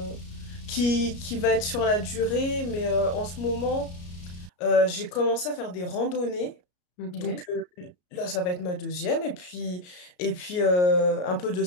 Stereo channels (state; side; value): late; right; 33 ms